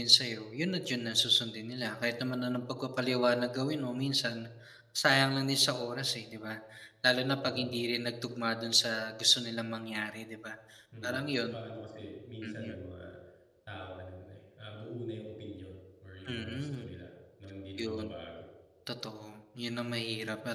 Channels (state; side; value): identical; both; correlation 1.00